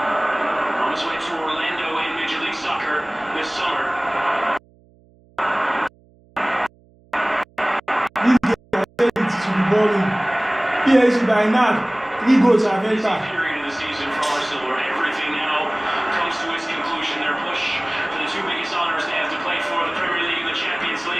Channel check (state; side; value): noise; right; hum, 30 dB below the sound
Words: On his way to Orlando in Major League Soccer this summer. This game to be boring. PSG by now, 3 goals are Busy better. period of the season for Arsenal, where everything now comes to its conclusion. Their push for the 2 biggest honors they have to play for, the Premier League and the Champions